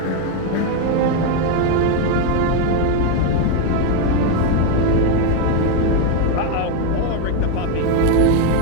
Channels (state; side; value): different; both; correlation 0.02